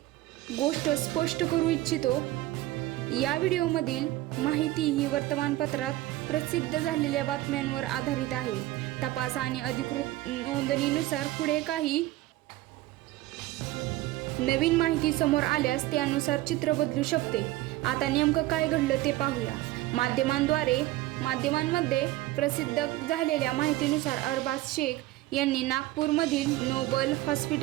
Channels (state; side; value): quieter; left; 16.8 dB